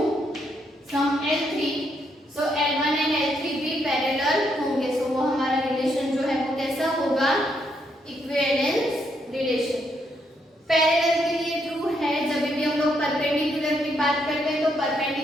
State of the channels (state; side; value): normal; both; correlation 0.76